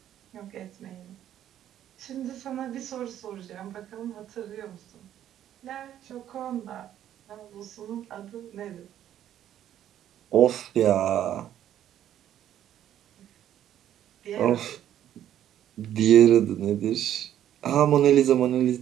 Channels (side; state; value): left; quieter; 11.2 dB